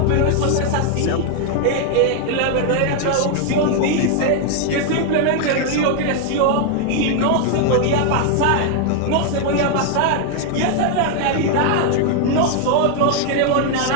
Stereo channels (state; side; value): different; both; correlation 0.00